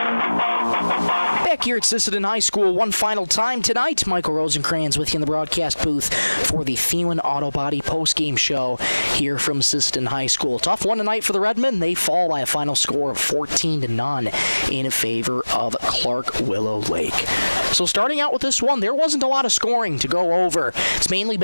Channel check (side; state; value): both; inverted; correlation -1.00